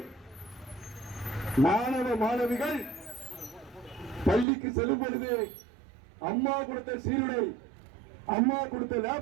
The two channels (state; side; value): drops out; left; at 4.5 s